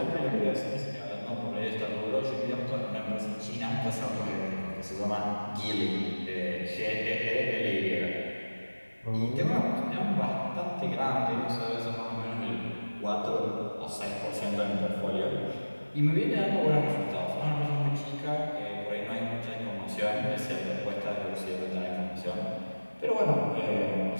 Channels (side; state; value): both; inverted; correlation -1.00